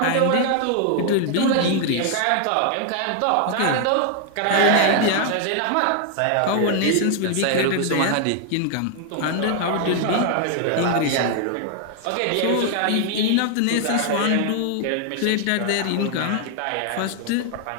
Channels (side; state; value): both; different; correlation 0.00